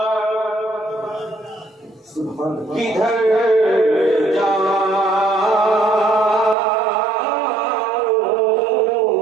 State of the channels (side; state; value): left; drops out; at 6.6 s